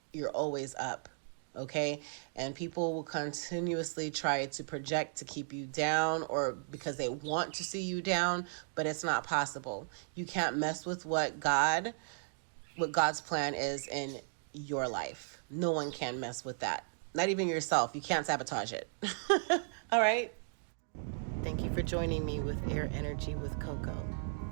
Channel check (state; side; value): silent; left; digital silence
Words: You're always up, okay? And people will continuously try to project to keep you down, or because they want to see you down, but it's not possible. You can't mess with what God's plan is in your life. No one can mess with that. Not even yourself. You can't sabotage it. All right. Thank you for joining me with Air Energy with Coco.